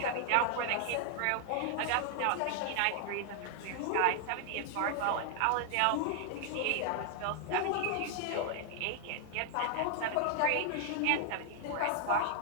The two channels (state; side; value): different; both; correlation 0.00